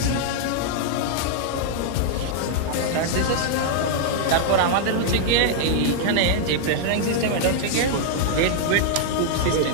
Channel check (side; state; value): both; different; correlation -0.01